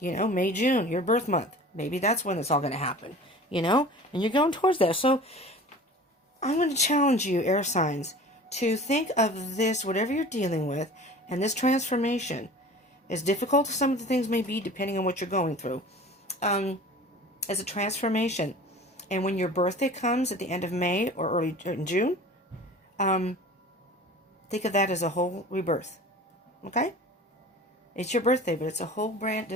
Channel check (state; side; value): normal; both; correlation 0.41